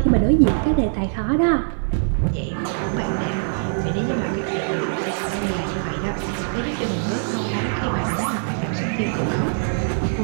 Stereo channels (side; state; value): left; silent; digital silence